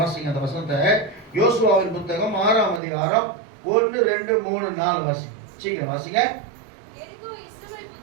அந்த வசனத்தை. யோசுவாவின் புத்தகம் 6ஆம் அதிகாரம் 1, 2, 3, 4 வாசிங்க. சீக்கிரம் வாசிங்க.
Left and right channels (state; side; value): drops out; left; at 2.8 s